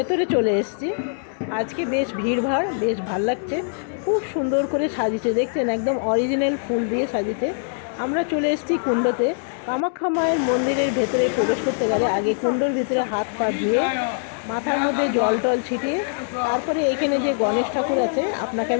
চলে এসেছি। আজকে বেশ ভিড়ভাড়, বেশ ভাল লাগছে। খুব সুন্দর করে সাজিয়েছে, দেখছেন একদম অরিজিনাল ফুল দিয়ে সাজিয়েছে। আমরা চলে এসেছি কুণ্ডতে। কামাখ্যা মায়ের মন্দিরের ভেতরে প্রবেশ করতে গেলে আগে কুণ্ডর ভিতরে হাত পা ধুয়ে মাথার মধ্যে জল টল ছিটিয়ে তারপরে এখানে যে গণেশ ঠাকুর আছে আপনাকে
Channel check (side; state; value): right; silent; digital silence